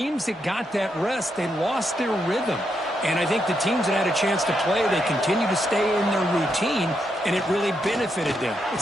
that got that rest, they lost their rhythm. And I think the teams that had a chance to play, they continue to stay in their routine, and it really benefited them.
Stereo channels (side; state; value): both; normal; correlation 0.81